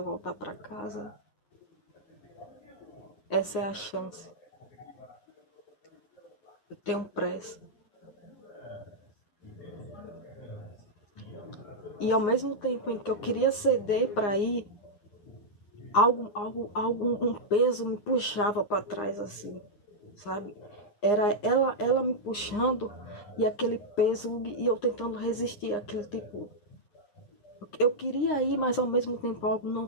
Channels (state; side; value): late; right; 9.7 ms